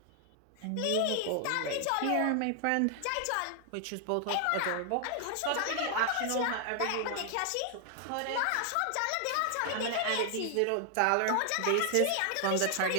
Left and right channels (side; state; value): both; different; correlation 0.00